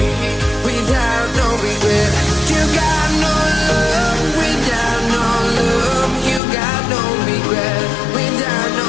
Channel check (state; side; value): drops out; right; at 6.4 s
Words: without no regret. You got no love without no love. You got no regret without no